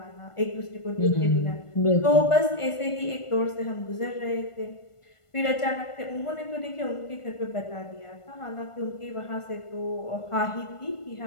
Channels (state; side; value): late; right; 1.5 ms